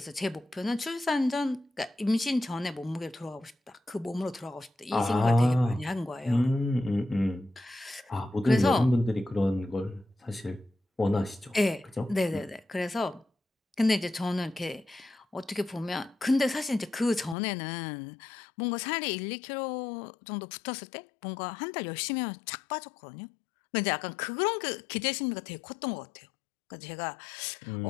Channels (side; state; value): right; drops out; at 17.4 s